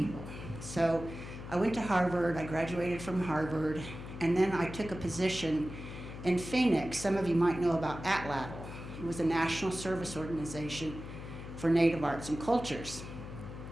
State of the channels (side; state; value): left; noise; hum, 10 dB below the sound